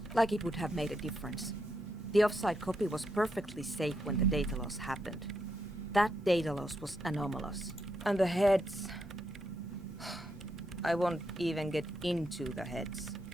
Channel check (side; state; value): both; normal; correlation 0.81